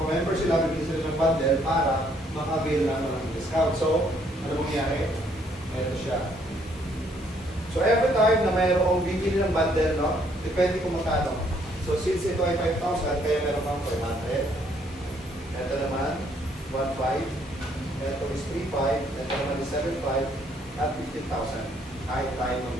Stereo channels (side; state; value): both; normal; correlation 0.67